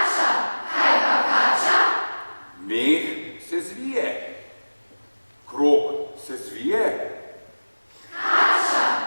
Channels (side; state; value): both; inverted; correlation -1.00